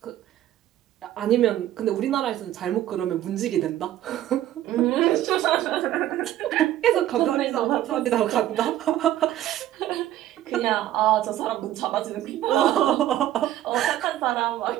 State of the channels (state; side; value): quieter; left; 13.0 dB